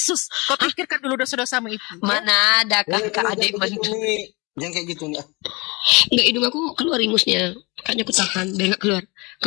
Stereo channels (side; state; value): right; quieter; 26.7 dB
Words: Kau pikirkan dulu dosa-dosamu itu. Mana ada kakak adik mantu. Jangan kayak gitu nih. Enggak, hidung aku keluar ingusnya. Makanya aku tahan, biar